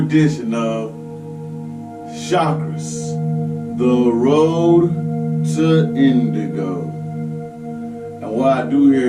of Chakras, the road to Indigo. And what I do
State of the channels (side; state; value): both; identical; correlation 1.00